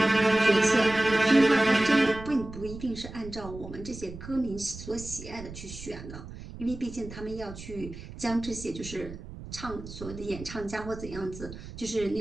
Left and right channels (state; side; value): noise; right; rumble, 13 dB below the sound